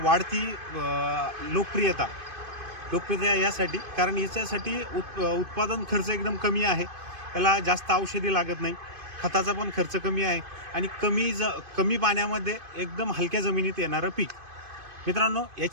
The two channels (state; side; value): late; left; 2.5 ms